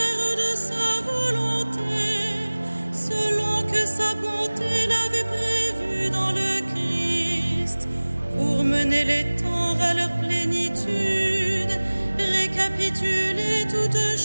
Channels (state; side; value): inverted; both; correlation -1.00